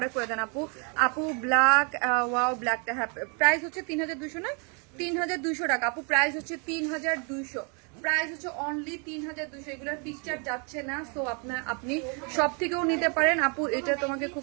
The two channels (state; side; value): quieter; left; 35.9 dB